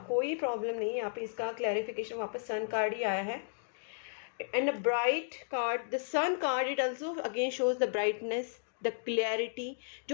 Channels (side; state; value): right; silent; digital silence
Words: कोई प्रॉब्लम नहीं है। यहाँ पे इसका क्लैरिफिकेशन वापस सन कार्ड ही आया है and a bright card, the sun card, it also again shows the brightness, the clarity.